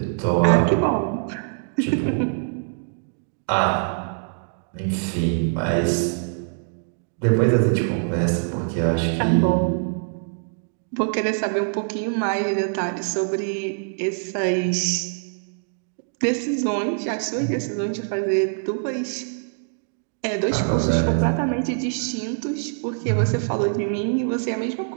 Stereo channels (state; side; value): silent; left; digital silence